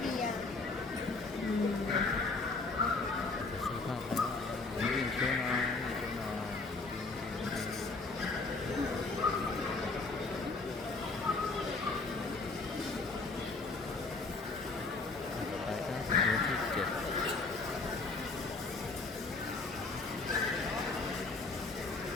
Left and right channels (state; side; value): quieter; right; 3.7 dB